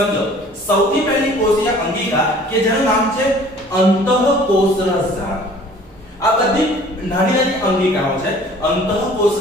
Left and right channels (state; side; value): normal; both; correlation 0.50